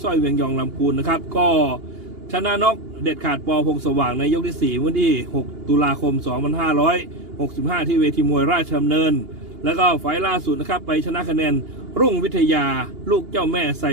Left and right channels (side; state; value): left; late; 2.8 ms